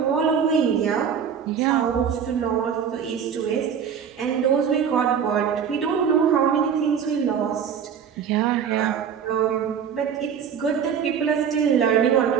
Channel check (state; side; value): quieter; left; 7.6 dB